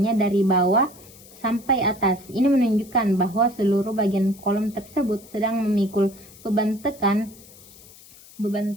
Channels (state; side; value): noise; left; hiss, 22 dB below the sound